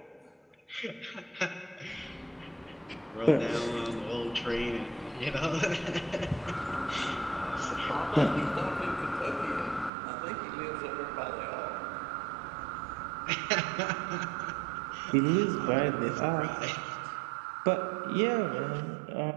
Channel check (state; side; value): drops out; left; at 9.9 s